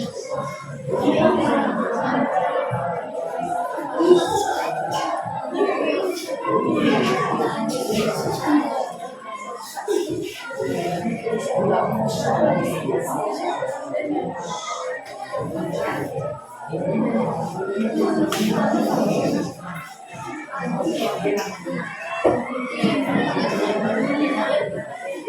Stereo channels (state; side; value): identical; both; correlation 1.00